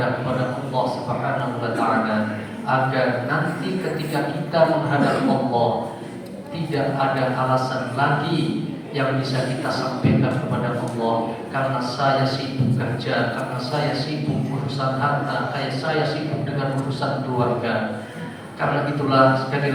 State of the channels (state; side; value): identical; both; correlation 1.00